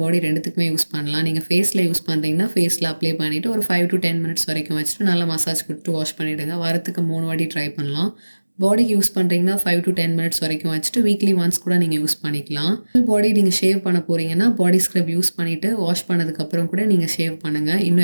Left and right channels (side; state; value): both; inverted; correlation -1.00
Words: பாடி ரெண்டுத்துக்குமே யூஸ் பண்ணலாம். நீங்கள் ஃபேஸில் யூஸ் பண்ணுறீங்கன்னா ஃபேஸில் அப்ளை பண்ணிவிட்டு ஒரு 5 to 10 minutes வரைக்கும் வச்சுட்டு நல்லா மசாஜ் கொடுத்து வாஷ் பண்ணிவிடுங்க. வாரத்துக்கு 3 வாட்டி ட்ரை பண்ணலாம். பாடிக்கு யூஸ் பண்ணுறீங்கன்னா 5 to 10 minutes வரைக்கும் வச்சுட்டு வீக்லி ஒன்ஸ் கூட நீங்கள் யூஸ் பண்ணிக்கலாம். ஃபுல் பாடி நீங்கள் ஷேவ் பண்ண போகிறீங்கன்னா பாடி ஸ்க்ரப் யூஸ் பண்ணிவிட்டு வாஷ் பண்ணதுக்கப்புறம் கூட நீங்கள் ஷேவ் பண்ணுங்கள்.